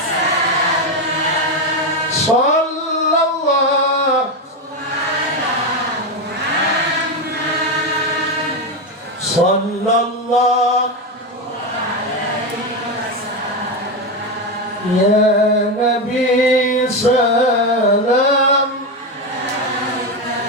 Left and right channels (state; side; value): normal; both; correlation 0.11